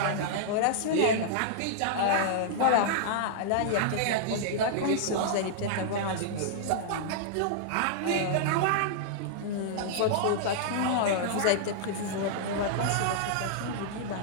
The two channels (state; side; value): different; both; correlation -0.01